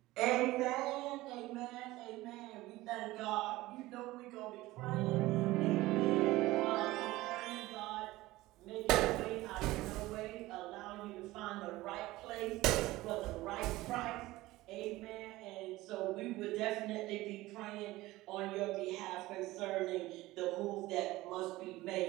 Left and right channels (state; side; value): quieter; left; 18.3 dB